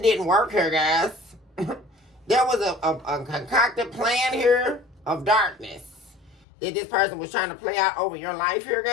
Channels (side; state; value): right; drops out; at 6.5 s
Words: work here, guys. There was a concocted plan here of darkness that this person was trying to play out over your life here,